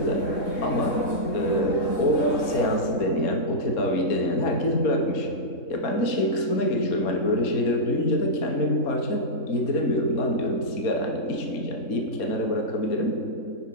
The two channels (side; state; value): right; late; 3.7 ms